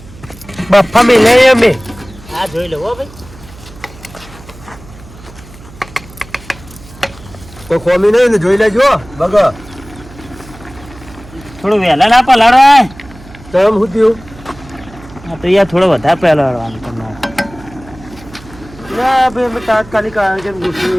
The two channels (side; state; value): right; noise; hum, 20 dB below the sound